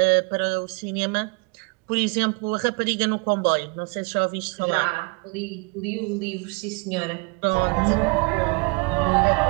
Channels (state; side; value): quieter; left; 30.0 dB